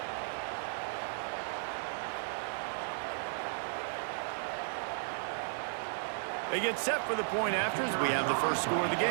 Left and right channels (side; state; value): left; silent; digital silence